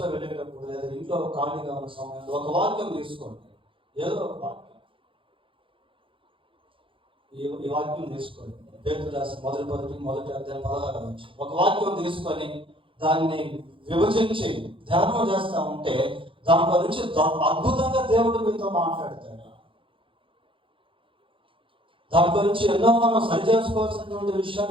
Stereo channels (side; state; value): left; late; 0.25 ms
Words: వెళ్ళేటప్పుడు లేదా ఇంట్లో ఖాళీగా ఉన్న సమయంలో ఒక వాక్యం తీసుకోండి. ఏదో ఒక వాక్యం, ఈ వాక్యం తీసుకోండి. పేతురు రాసిన మొదటి అధ్యాయం 16వ వచనం. ఒక వాక్యం తీసుకొని దాన్ని విభజించి ధ్యానం చేస్తా ఉంటే దాంట్లో నుంచి అద్భుతంగా దేవుడు మీతో మాట్లాడతాడు. దాంట్లో నుంచి ఎన్నో మనం సరి చేసుకోవాల్సినటువంటి